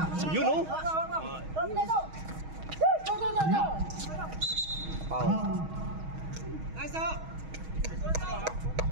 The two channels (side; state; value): left; late; 6.3 ms